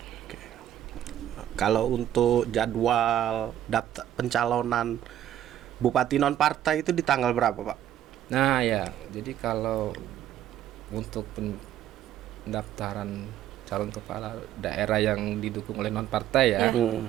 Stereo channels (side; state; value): left; quieter; 11.5 dB